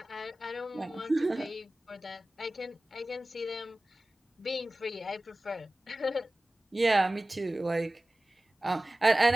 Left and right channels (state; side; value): normal; both; correlation 0.97